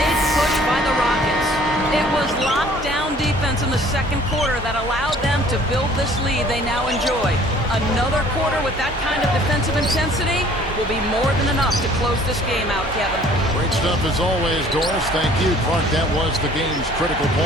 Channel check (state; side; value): normal; both; correlation 0.55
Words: push by the Rockets. It was lockdown defense in the second quarter that allowed them to build this lead they now enjoy. Another quarter with that kind of defensive intensity will be more than enough to close this game out, Kevin. Great stuff as always, Doris. Thank you. Clark, that was the game's critical